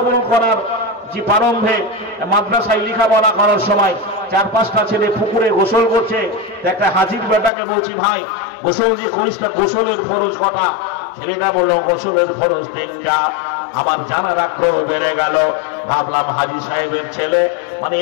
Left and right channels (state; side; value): drops out; right; at 7.5 s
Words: করার যে প্রারম্ভে মাদ্রাসায় লেখাপড়া করার সময় 4-5টা ছেলে পুকুরে গোসল করছে। একটা হাজির বেটাকে বলছি ভাই গোসল যে করিস না, গোসলের ফরজ কটা? ছেলেটা বললো গোসলের ফরজ 3টা। আমার জানার আগ্রহ বেড়ে গেল। ভাবলাম হাজী সাহেবের ছেলে, মানে